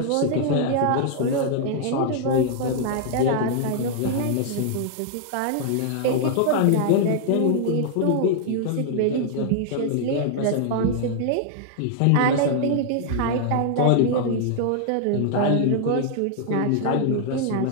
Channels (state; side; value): different; both; correlation -0.01